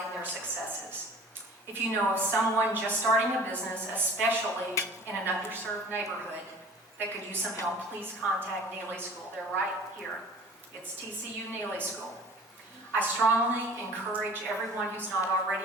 in their successes. If you know of someone just starting a business, especially in an underserved neighborhood, that could use some help, please contact Neely School. They're right here. It's TCU Neely School. I strongly encourage everyone who's not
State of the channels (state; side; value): normal; both; correlation 0.45